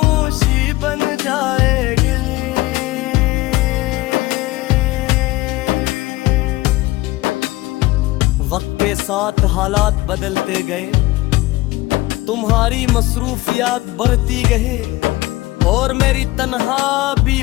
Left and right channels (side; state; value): right; quieter; 18.9 dB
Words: बन जाएगी। वक्त के साथ हालात बदलते गए, तुम्हारी मसरूफियात बढ़ती गई और मेरी तन्हा